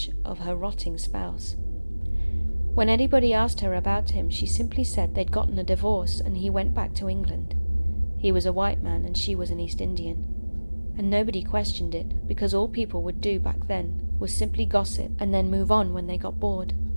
of her rotting spouse. When anybody asked her about him, she simply said they'd gotten a divorce and he went back to England. He was a white man and she was an East Indian. And nobody questioned it, because all people would do back then was simply gossip and then move on when they got bored.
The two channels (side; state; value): both; inverted; correlation -1.00